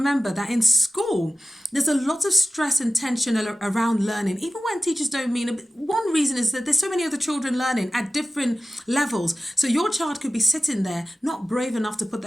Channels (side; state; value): both; normal; correlation 0.94